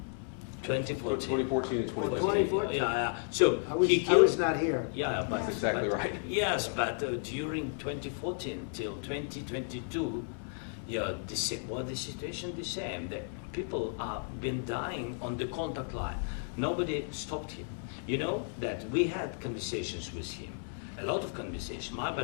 2014. 2014 and 2015. 2014. Yeah. So I was not here. Yeah, but that's exactly right. Yes, but during 2014 till 2022, yeah, the situation the same. The people have been dying on the contact line. Nobody stopped him. You know that we had conversations with him, a lot of conversations, my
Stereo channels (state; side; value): silent; right; 56 dB below the other